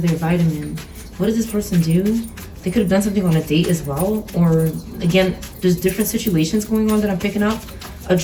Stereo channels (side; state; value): both; identical; correlation 1.00